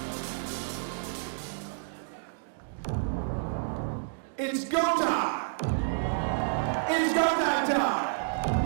It's go time! It's go time!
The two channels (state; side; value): silent; left; digital silence